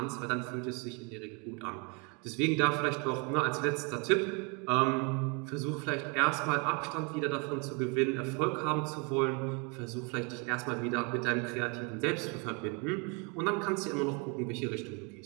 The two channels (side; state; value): left; quieter; 32.8 dB